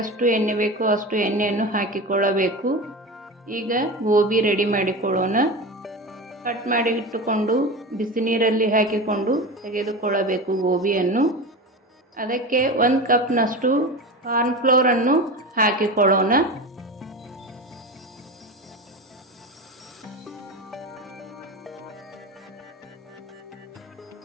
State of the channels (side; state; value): both; normal; correlation 0.26